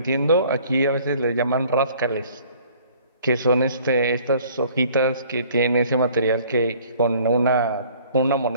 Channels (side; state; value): both; inverted; correlation -0.55